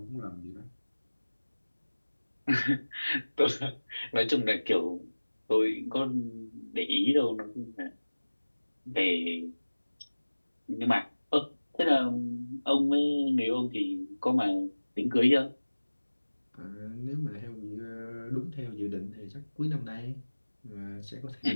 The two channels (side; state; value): both; inverted; correlation -1.00